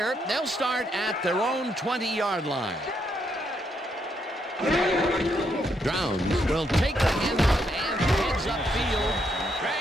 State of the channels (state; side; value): normal; both; correlation 0.76